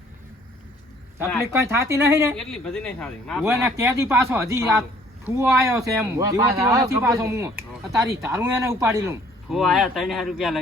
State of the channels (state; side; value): normal; both; correlation 0.58